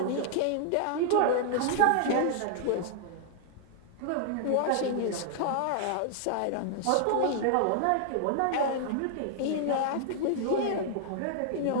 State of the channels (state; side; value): different; both; correlation -0.01